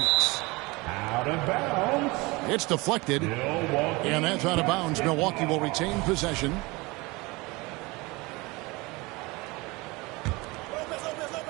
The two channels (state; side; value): quieter; left; 23.9 dB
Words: Out of bounds. It's deflected. Milwaukee. And that's out of bounds. Milwaukee will retain possession.